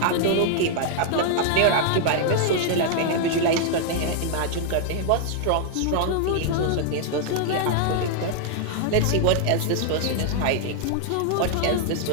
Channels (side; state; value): both; different; correlation 0.00